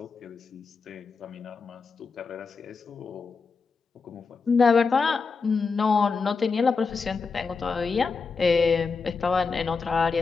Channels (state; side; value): quieter; right; 4.9 dB